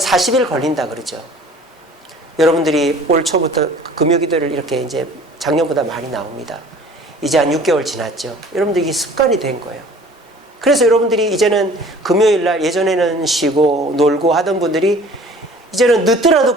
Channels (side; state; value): both; normal; correlation 0.49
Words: 40일 걸린다 그러죠. 여러분들이 올 초부터 금요기도를 이렇게 이제 작년보다 많이 나옵니다. 이제 한 6개월 지났죠. 여러분들이 습관이 된 거예요. 그래서 여러분들이 이제는 금요일 날, 예전에는 쉬고 놀고 하던 분들이 이제는 늦더라도